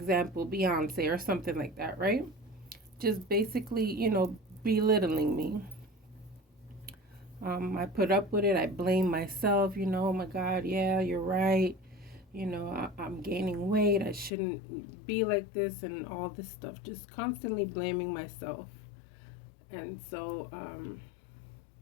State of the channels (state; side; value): drops out; right; at 14.3 s